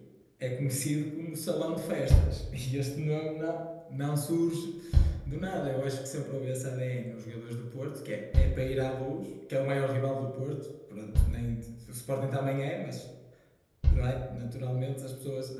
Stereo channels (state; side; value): identical; both; correlation 1.00